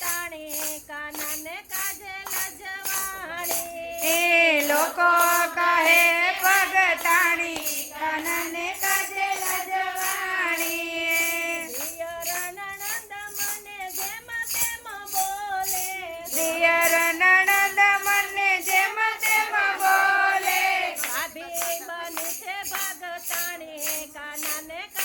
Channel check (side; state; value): both; identical; correlation 1.00